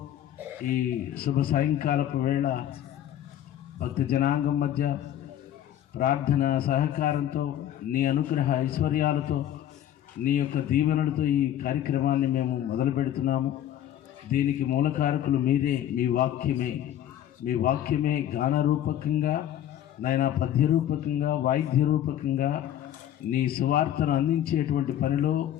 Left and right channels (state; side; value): quieter; right; 11.4 dB